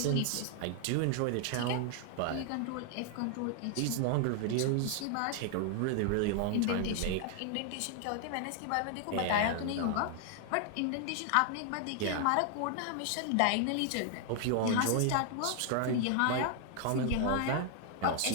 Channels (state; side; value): different; both; correlation 0.00